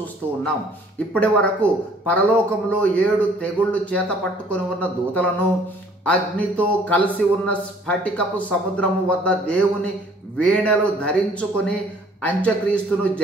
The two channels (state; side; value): normal; both; correlation 0.57